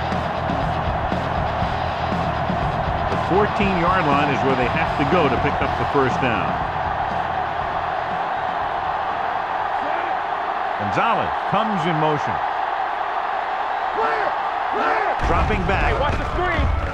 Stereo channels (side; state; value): both; identical; correlation 1.00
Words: The 14-yard line is where they have to go to pick up the 1st down. Gonzalez comes in motion. Dropping back. Watch the screen.